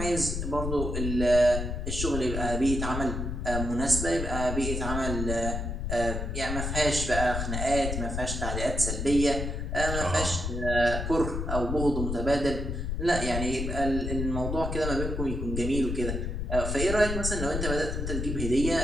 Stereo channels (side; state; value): left; noise; rumble, 3 dB below the sound